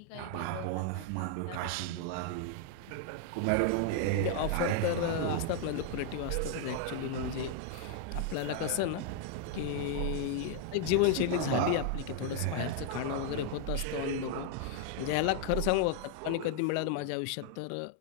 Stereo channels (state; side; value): different; both; correlation 0.00